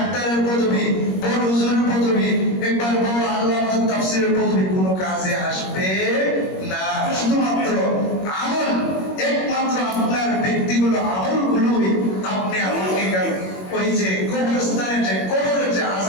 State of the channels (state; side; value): late; right; 21 ms